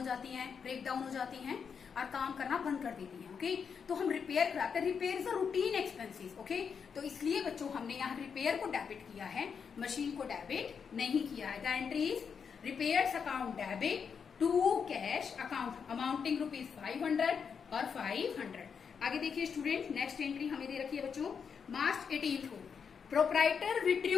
जाती हैं, ब्रेक डाउन हो जाती हैं और काम करना बंद कर देती हैं। ओके, तो हम रिपेयर कराते हैं। Repair is a routine expenses. Okay, तो इसलिए बच्चों हमने यहाँ रिपेयर को डेबिट किया है, मशीन को डेबिट नहीं किया है। The entry is repairs account debit to cash account amounting rupees 500 और 500। आगे देखिए स्टूडेंट, नेक्स्ट एंट्री हमें दे रखी है बच्चों मार्च 18 को प्रोप्राइटर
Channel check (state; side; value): quieter; right; 6.5 dB